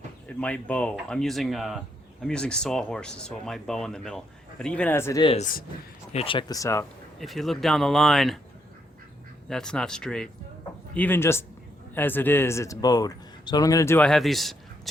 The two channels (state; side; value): normal; both; correlation 0.77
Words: it might bow. I'm using sawhorses, so it might bow in the middle. But even as it is, here, check this out. If you look down the line, that's not straight. Even just as it is, it's bowed. So what I'm going to do, I have these